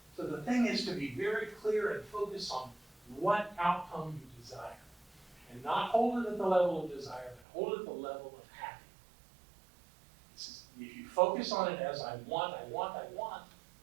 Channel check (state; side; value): drops out; left; at 7.5 s